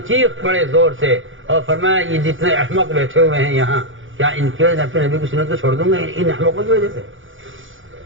چیخ پڑے زور سے اور فرمایا یہ جتنے احمق بیٹھے ہوئے ہیں یہاں, کیا ان کی وجہ سے اپنے نبی کی سنت کو چھوڑ دوں گا ان احمقوں کی وجہ سے.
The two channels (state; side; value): late; left; 0.57 ms